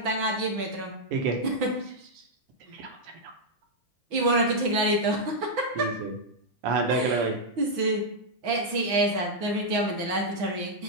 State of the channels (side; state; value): left; late; 6.0 ms